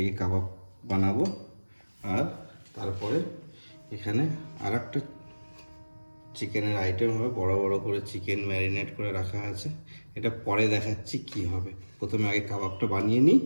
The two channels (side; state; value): both; inverted; correlation -1.00